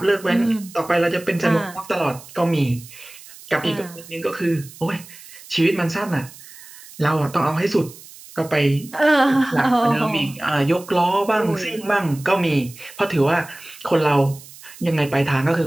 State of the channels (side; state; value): right; noise; hiss, 19 dB below the sound